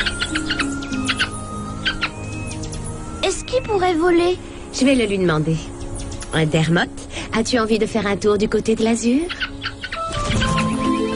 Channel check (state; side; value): identical; both; correlation 1.00